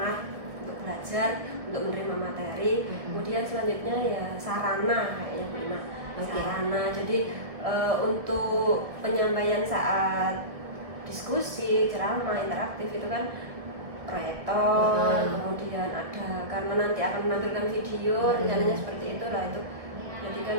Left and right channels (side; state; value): left; late; 1.7 ms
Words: untuk belajar, untuk menerima materi. Kemudian selanjutnya ya sarana kayaknya prima. Sarana. Jadi untuk penyampaian saat diskusi, ceramah, interaktif itu kan proyektor, kemudian ada karena nanti akan menampilkan video, rencananya seperti itu lah itu. Jadi kan